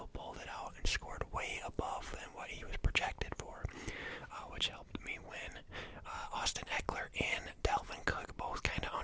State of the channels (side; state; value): both; identical; correlation 1.00